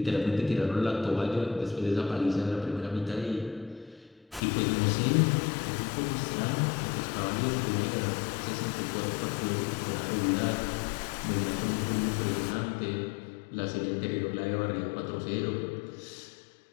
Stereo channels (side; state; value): right; drops out; at 4.4 s